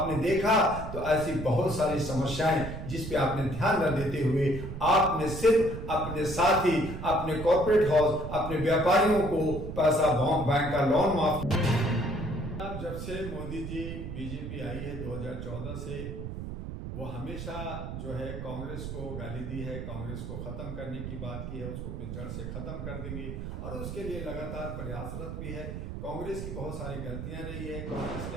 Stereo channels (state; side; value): noise; right; rumble, 7 dB below the sound